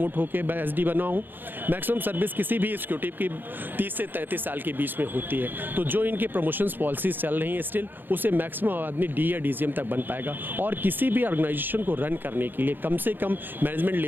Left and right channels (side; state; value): left; late; 0.093 ms